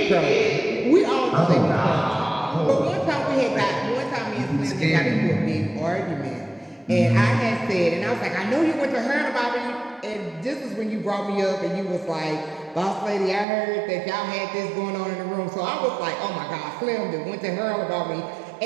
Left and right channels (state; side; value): drops out; left; at 13.5 s